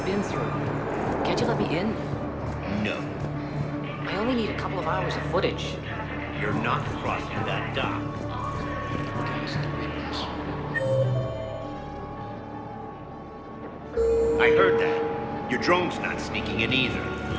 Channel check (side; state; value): both; identical; correlation 1.00